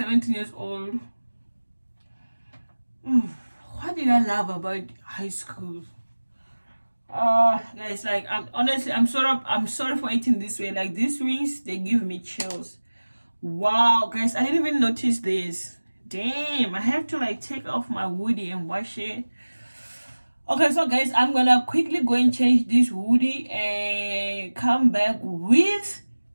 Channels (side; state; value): both; inverted; correlation -1.00